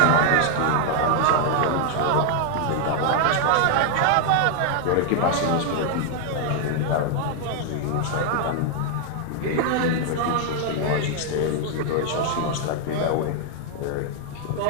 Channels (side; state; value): both; different; correlation 0.00